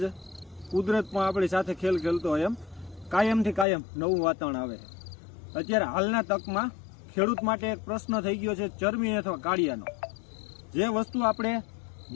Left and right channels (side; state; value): right; drops out; at 3.7 s